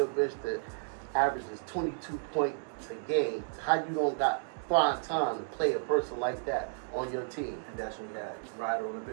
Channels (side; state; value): left; silent; digital silence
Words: averages 22 points a game? How you don't got find time to play a person like that on your team?" And that's when we got Ryder on the